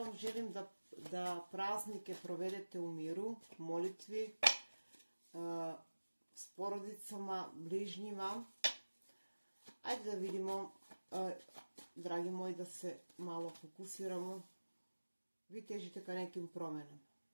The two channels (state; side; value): inverted; both; correlation -1.00